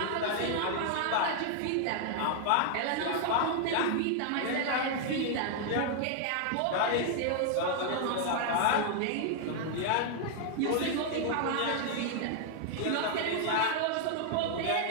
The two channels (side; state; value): both; different; correlation 0.00